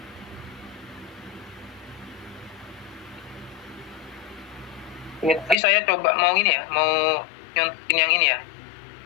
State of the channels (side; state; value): right; drops out; at 5.6 s